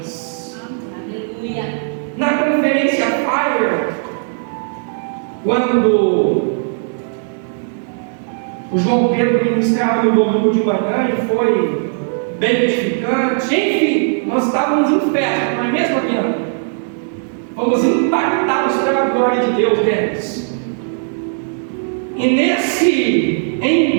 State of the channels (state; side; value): silent; left; 68 dB below the other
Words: Aleluia. Na conferência Fire, quando o João Pedro ministrava no domingo de manhã e foi bem edificante, enfim, nós estávamos em festa, não é mesmo, Adriana? Fomos impactados pela glória de Deus deles. E nesse